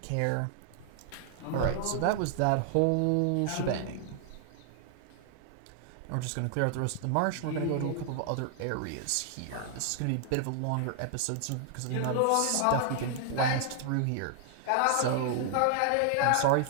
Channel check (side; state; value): both; different; correlation 0.00